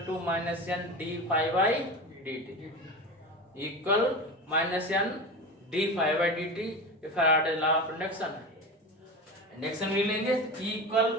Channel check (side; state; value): both; normal; correlation 0.27